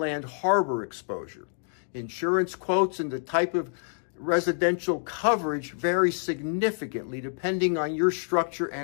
harbor exposure. Insurance quotes and the type of residential coverage vary significantly depending on your structure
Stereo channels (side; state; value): right; silent; digital silence